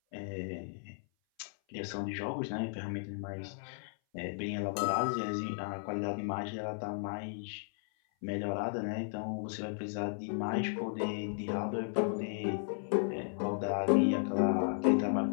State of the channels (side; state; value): right; silent; 55 dB below the other